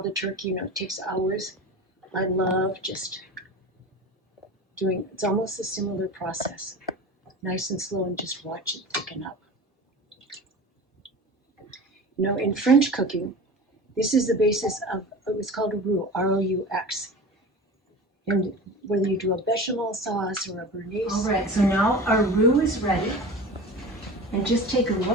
the turkey. You know, it takes hours. I love just doing, it's almost a similar process. Nice and slow and just watch it thicken up. You know, in French cooking, this is the basis of, it was called a roux, R-O-U-X. And whether you do a bechamel sauce or a béarnaise. All right, so now our roux is ready. And just take a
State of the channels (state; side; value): normal; both; correlation 0.34